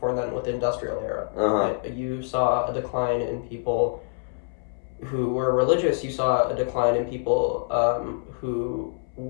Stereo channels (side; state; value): right; silent; 61 dB below the other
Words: then with the industrial era. Right? You saw a decline in people who were religious. You saw a decline in people who